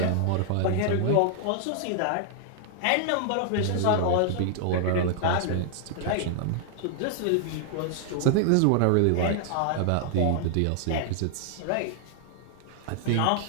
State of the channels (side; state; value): both; different; correlation 0.00